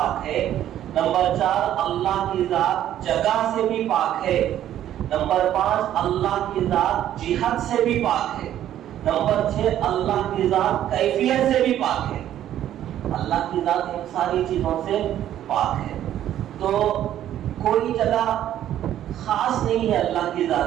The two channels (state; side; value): quieter; left; 11.6 dB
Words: ہے۔ نمبر 4، اللہ کی ذات جگہ سے بھی پاک ہے۔ نمبر 5، اللہ کی ذات جہت سے بھی پاک ہے۔ نمبر 6، اللہ کی ذات کیفیت سے بھی پاک ہے۔ اللہ کی ذات ان ساری چیزوں سے پاک ہے۔ تو کوئی جگہ خاص نہیں ہے اللہ کی